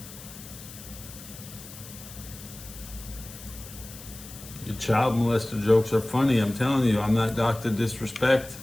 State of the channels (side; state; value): left; noise; hiss, 15 dB below the sound